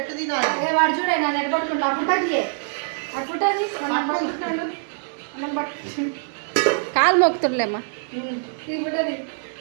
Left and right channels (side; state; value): left; silent; digital silence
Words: వాడు చూడే నన్ను ఎట్ట పట్టుకుంటా ఫోటోది కాలు మొక్కుతుండలేమ్మా.